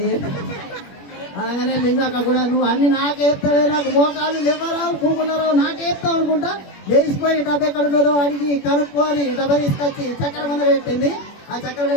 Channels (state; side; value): late; right; 21 ms